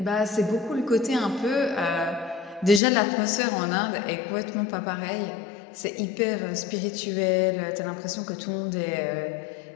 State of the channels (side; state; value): right; drops out; at 2.8 s